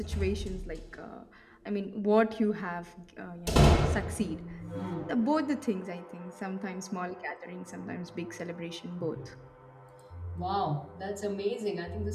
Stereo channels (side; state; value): both; identical; correlation 1.00